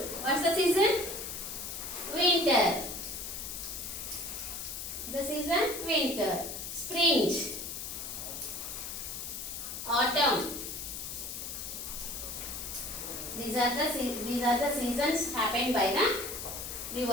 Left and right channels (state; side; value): noise; left; hiss, 7 dB below the sound